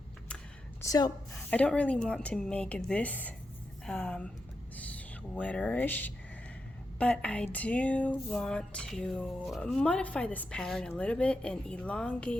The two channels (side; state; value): both; normal; correlation 0.87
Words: So I don't really want to make this sweaterish, but I do want to modify this pattern a little bit and